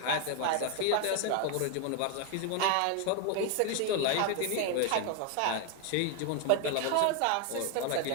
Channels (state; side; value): different; both; correlation 0.01